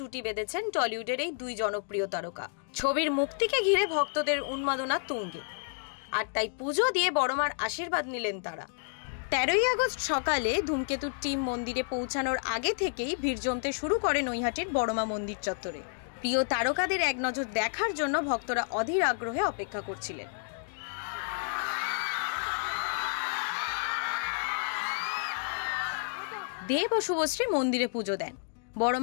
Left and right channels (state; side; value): silent; right; digital silence